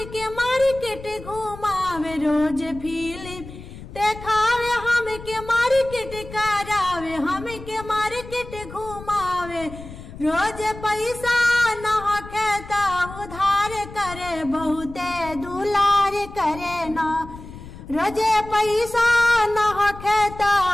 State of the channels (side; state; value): left; noise; rumble, 14 dB below the sound